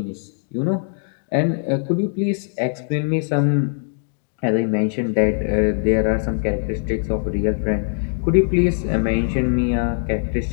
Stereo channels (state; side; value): silent; right; digital silence